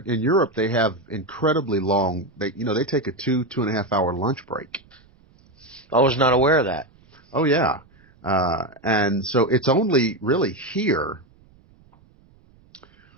In Europe they have incredibly long. They take a 2.5 hour lunch break. I was not aware of that. Oh yeah, and so it's only really here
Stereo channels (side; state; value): right; noise; rumble, 30 dB below the sound